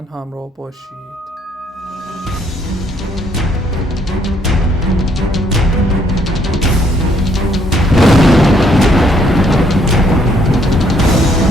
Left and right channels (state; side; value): normal; both; correlation 0.68